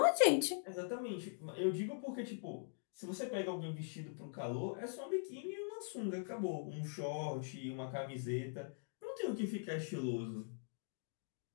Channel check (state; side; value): silent; right; digital silence